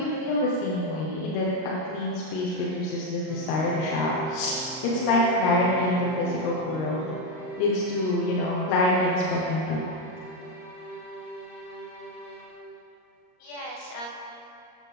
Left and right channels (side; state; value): right; late; 38 ms